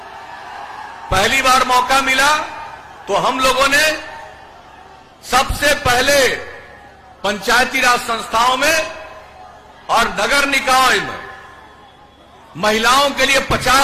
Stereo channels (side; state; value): both; identical; correlation 1.00